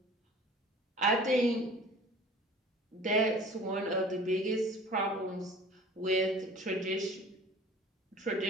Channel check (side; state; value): both; normal; correlation 0.45